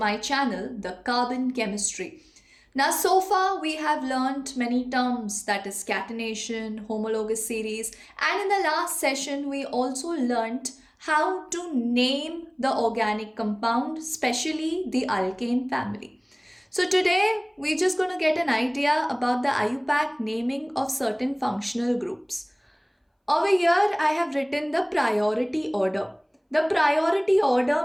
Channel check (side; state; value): both; identical; correlation 1.00